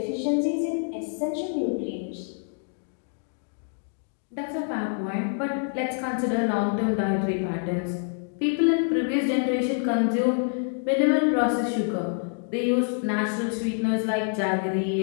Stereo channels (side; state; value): right; silent; 61 dB below the other